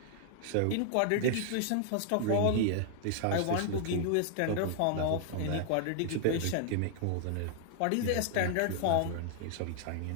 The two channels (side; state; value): both; different; correlation 0.00